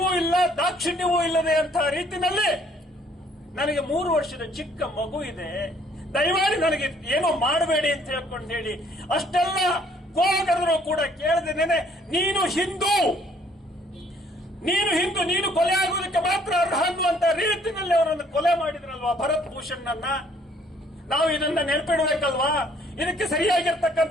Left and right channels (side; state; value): both; normal; correlation 0.62